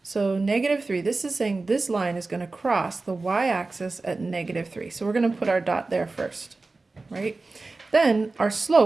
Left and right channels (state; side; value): quieter; left; 3.5 dB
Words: so -3, this is saying this line is going to cross the y-axis at -3. So we're going to put our dot there first, right? Then our